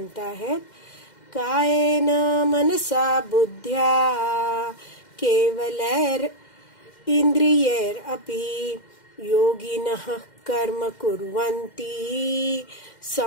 आहेत, कायेन मनसा बुद्ध्या केवलैर इंद्रियैर अपि योगिनः कर्म कुर्वन्ति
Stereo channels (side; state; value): right; late; 2.1 ms